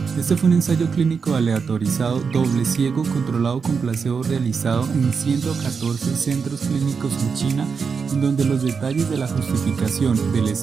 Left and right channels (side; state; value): left; quieter; 5.6 dB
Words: Este fue un ensayo clínico aleatorizado doble ciego controlado con placebo realizado en 114 centros clínicos en China, en donde los detalles de la justificación del